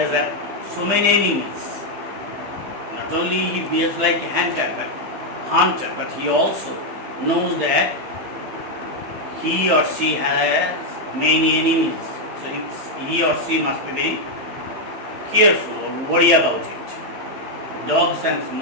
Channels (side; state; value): left; late; 15 ms